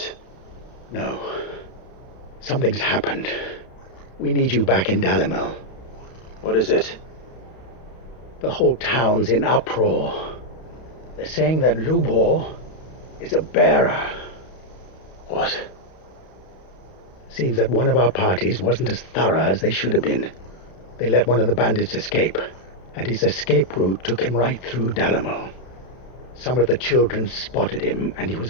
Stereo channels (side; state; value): right; late; 32 ms